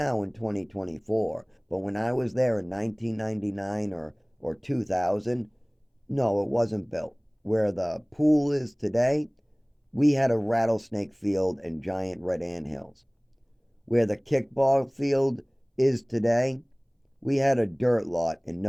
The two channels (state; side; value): identical; both; correlation 1.00